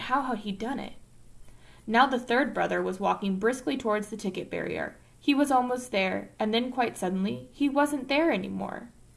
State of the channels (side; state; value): both; identical; correlation 1.00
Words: how had he done it? Now the third brother was walking briskly towards the ticket barrier. He was almost there, and then quite suddenly, he wasn't there anymore.